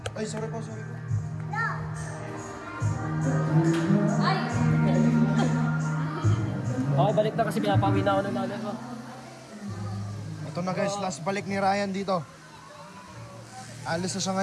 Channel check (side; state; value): both; identical; correlation 1.00